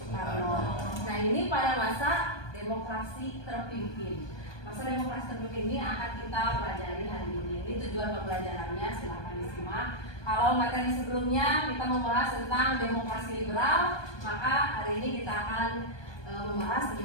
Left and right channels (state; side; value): late; right; 1.2 ms